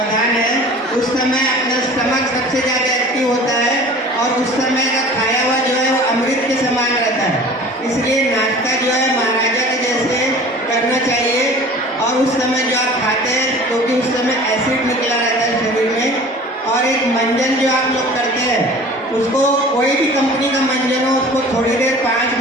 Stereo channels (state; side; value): normal; both; correlation 0.43